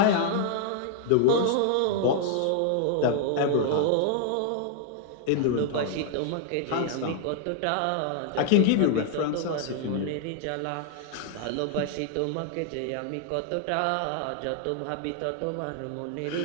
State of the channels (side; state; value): both; different; correlation 0.00